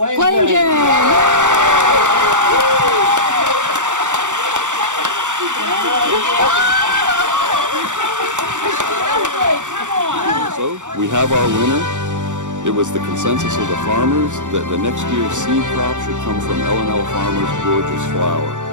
Jane. So we have our winner. It was the consensus of the farmers that the next year's seed crop should come from L&L Farmers' gorgeous flower.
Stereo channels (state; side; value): late; left; 0.85 ms